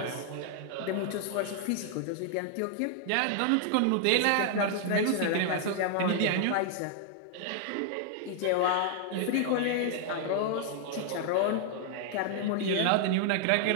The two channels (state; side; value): different; both; correlation 0.00